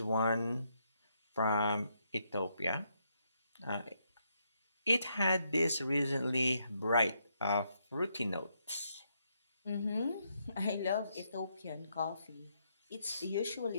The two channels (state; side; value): inverted; both; correlation -0.77